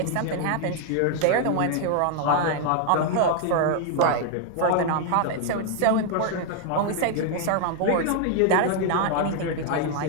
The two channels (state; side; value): different; both; correlation 0.00